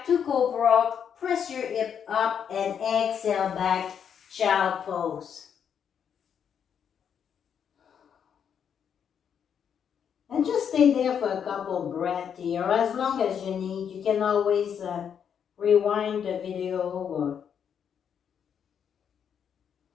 to cobra. Press your hip up and exhale back. Child pose. And just stay there for a couple breaths here. As long as you need. You can always rewind the video or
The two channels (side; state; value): right; quieter; 7.9 dB